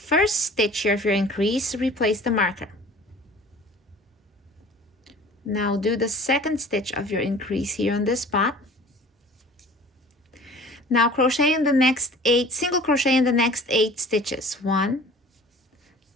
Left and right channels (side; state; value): both; normal; correlation 0.46